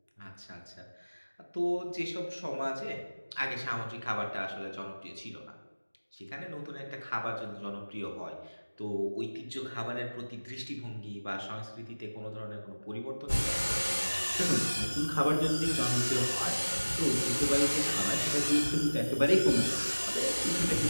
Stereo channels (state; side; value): inverted; both; correlation -1.00